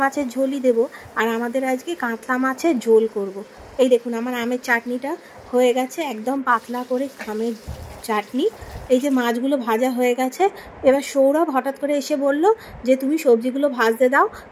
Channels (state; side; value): identical; both; correlation 1.00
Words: মাছের ঝোলই দেবো, আর আমাদের আজকে কাতলা মাছের ঝোল করব। এই দেখুন আমার আমের চাটনিটা হয়ে গেছে, একদম পাতলা করে আমের চাটনি। এই যে মাছগুলো ভাজা হয়ে গেছে। এবার সৌরভ হঠাৎ করে এসে বলল যে তুমি সবজিগুলো ভাজতে দাও,